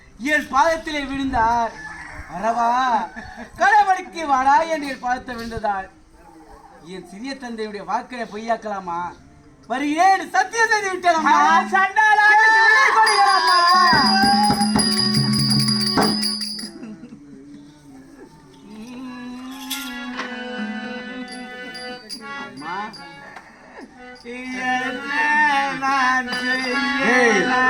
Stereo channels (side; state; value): both; identical; correlation 1.00